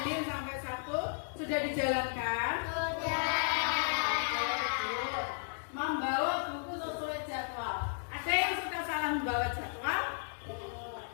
sampai Sabtu sudah dijalankan. Membawa buku sesuai jadwal. Ada yang suka salah membawa jadwal?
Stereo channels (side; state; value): right; silent; digital silence